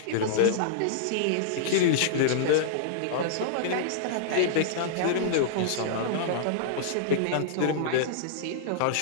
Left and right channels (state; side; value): different; both; correlation -0.02